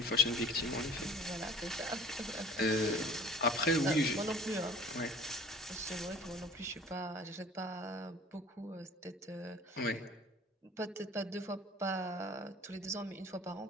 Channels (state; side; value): normal; both; correlation 0.47